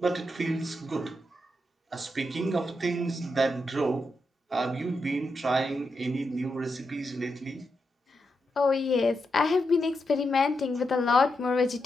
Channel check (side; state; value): both; normal; correlation 0.85